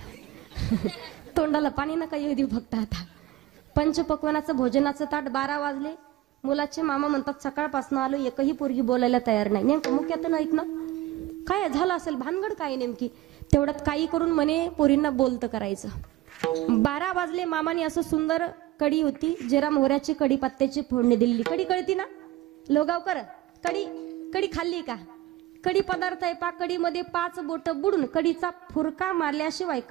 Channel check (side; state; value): left; quieter; 16.4 dB